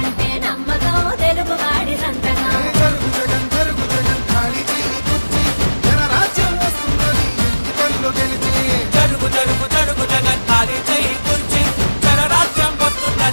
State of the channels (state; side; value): inverted; both; correlation -1.00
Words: నమ్మకం, తెలుగువాడి సంతకం. జరుగు జగన్ జరుగు జగన్ ఖాళీ చెయ్యి కుర్చీ జనరాజ్యం వస్తున్నది ఎన్నికల్లో గెలిచి. జరుగు జరుగు జరుగు జగన్ ఖాళీ చేయి కుర్చీ జనరాజ్యం